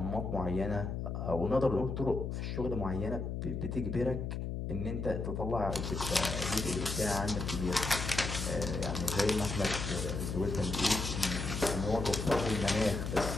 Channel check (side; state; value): left; noise; hum, 3 dB below the sound